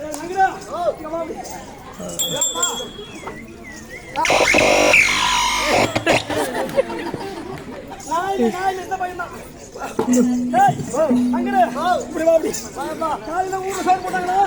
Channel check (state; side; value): identical; both; correlation 1.00